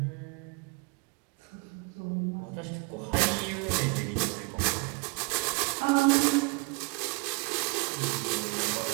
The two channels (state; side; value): quieter; left; 30.8 dB